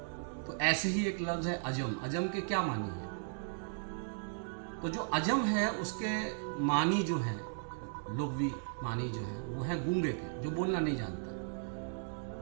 तो ऐसे ही एक लफ्ज़ है अजम, अजम के क्या मानी है। तो जो अजम है उसके मानी जो है, लुग़वी मानी जो है, वो है गूंगे के, जो बोलना नहीं जानता।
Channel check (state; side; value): silent; left; digital silence